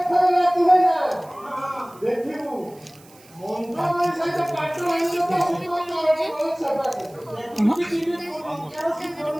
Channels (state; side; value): noise; right; hiss, 26 dB below the sound